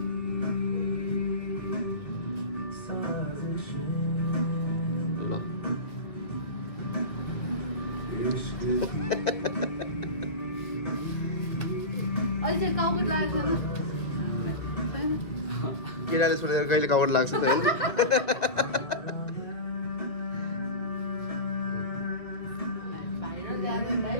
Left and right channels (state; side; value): late; right; 2.2 ms